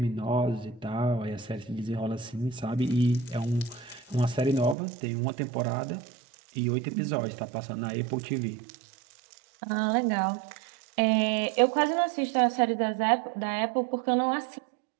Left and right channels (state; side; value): drops out; left; at 4.8 s